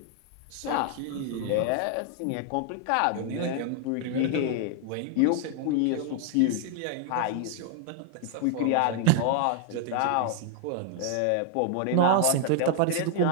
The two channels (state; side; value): different; both; correlation 0.00